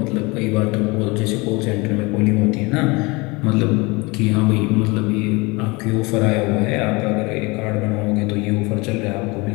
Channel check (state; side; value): quieter; right; 25.5 dB